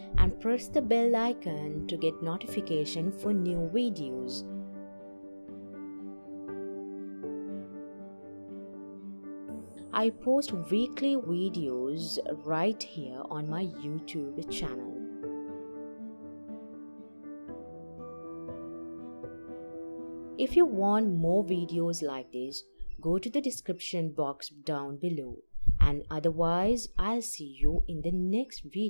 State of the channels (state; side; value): inverted; both; correlation -1.00